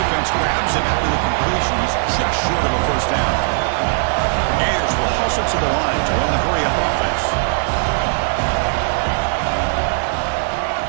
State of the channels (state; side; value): silent; left; digital silence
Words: grabs him after the completion. He's just short of a 1st down. The Gators will hustle to the line to run the hurry-up offense.